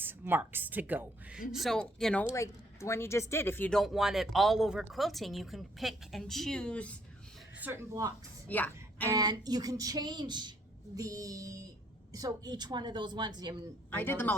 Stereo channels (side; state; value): both; normal; correlation 0.66